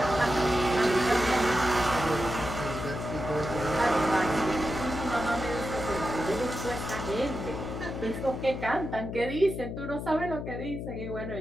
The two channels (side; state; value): left; noise; hum, 6 dB below the sound